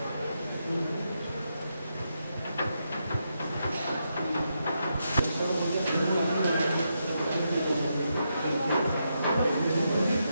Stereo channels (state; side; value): inverted; both; correlation -0.83